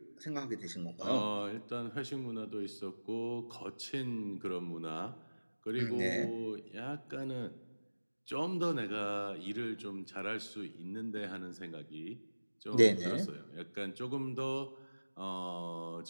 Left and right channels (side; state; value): both; inverted; correlation -1.00